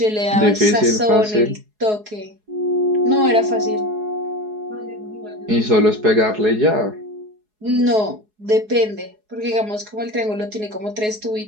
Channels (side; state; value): left; late; 4.7 ms